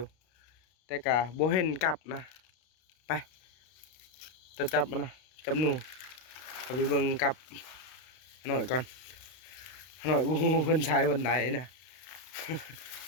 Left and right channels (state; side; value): late; right; 32 ms